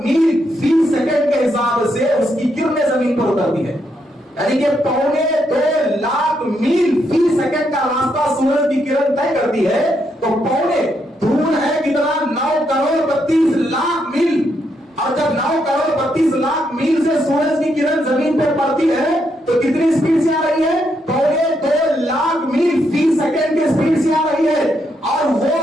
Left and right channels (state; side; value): normal; both; correlation 0.78